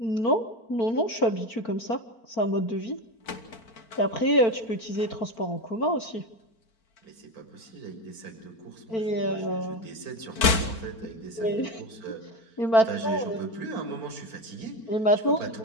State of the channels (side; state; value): right; late; 4.5 ms